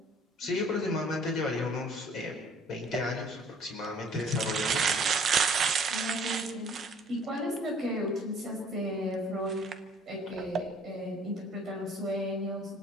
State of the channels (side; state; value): both; normal; correlation 0.56